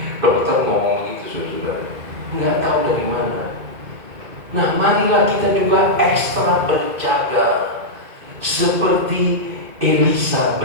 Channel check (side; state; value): left; late; 2.3 ms